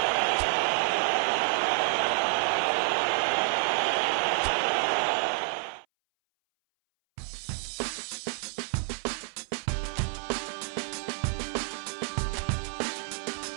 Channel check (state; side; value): silent; left; 59 dB below the other